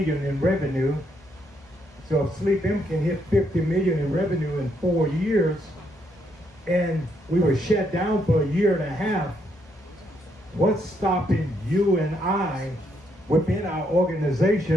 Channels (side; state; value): both; normal; correlation 0.75